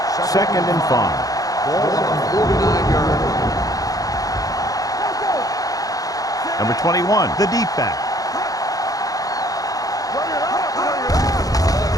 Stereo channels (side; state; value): right; late; 0.17 ms